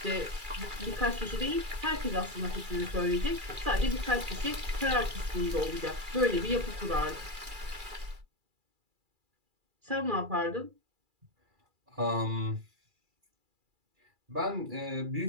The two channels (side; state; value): left; late; 2.3 ms